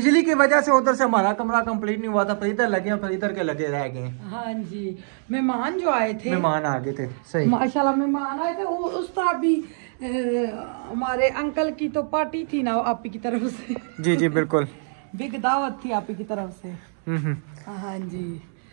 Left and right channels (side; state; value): left; silent; digital silence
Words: की वजह से उधर से हमारा कमरा कंप्लीट नहीं हुआ था, फिर इधर लगे फिर इधर के लगे रह गए। हाँ जी, मेहमान जो आए थे, मेहमान आ गए थे, सही माशाल्लाह मेहमान आए थे। उस तरह भी हमारे अंकल की तो पार्टी थी ना आपी की तरफ से। जी जी बिल्कुल, बिग दावत थी आपी की तरफ से। हाँ जी।